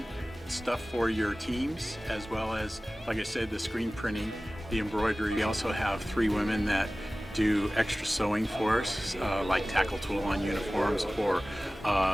stuff for your teams, as well as, like I said, the screen printing, the embroidery. We also have 3 women that do extra sewing for us, like tackle tool on uniforms, or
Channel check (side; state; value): both; normal; correlation 0.97